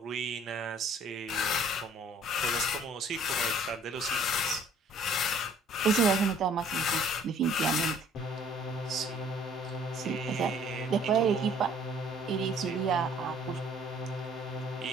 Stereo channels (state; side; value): normal; both; correlation 0.57